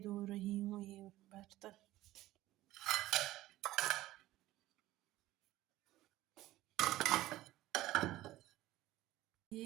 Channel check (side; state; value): left; quieter; 16.2 dB